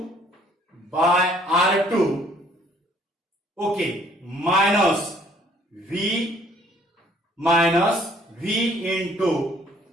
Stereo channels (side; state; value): both; normal; correlation 0.60